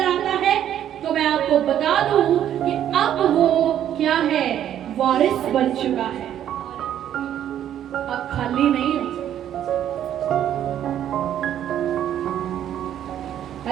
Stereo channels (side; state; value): left; quieter; 10.7 dB